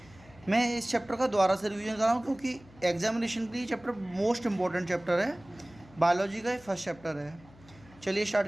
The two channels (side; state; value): left; noise; hum, 24 dB below the sound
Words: मैं इस चैप्टर का दोबारा से रिवीजन कर रहा हूँ क्योंकि एग्जामिनेशन के लिए चैप्टर मोस्ट इम्पॉर्टेंट चैप्टर है। बायोलॉजी का ये फर्स्ट चैप्टर है। चलिए